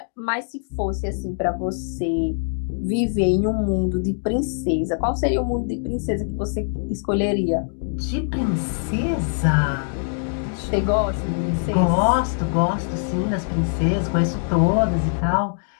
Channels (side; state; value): right; silent; digital silence